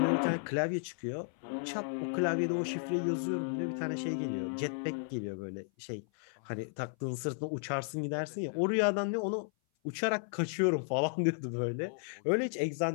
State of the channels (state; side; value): silent; right; 55 dB below the other